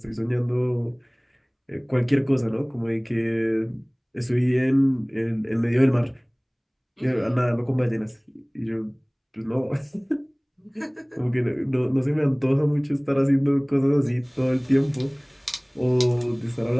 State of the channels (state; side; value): identical; both; correlation 1.00